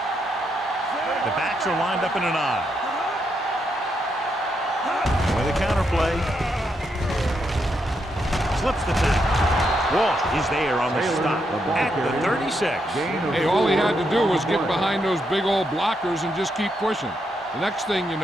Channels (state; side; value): normal; both; correlation 0.80